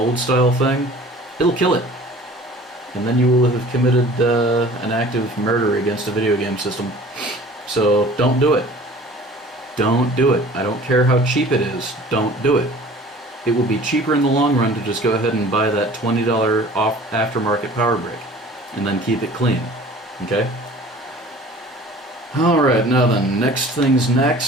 style thing, it'll kill it. And then you will have committed an act of murder against a video game system. So don't do it. Don't do it. I don't care how cheap it is. Don't do it. It will be cheaper in the long run to just go ahead and buy that $20 off aftermarket power brick and then keep it clean. Okay? Alright, now then, next things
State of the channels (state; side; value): normal; both; correlation 0.46